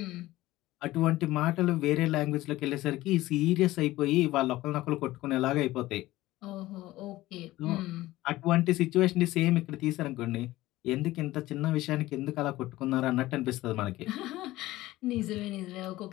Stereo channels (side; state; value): right; quieter; 17.2 dB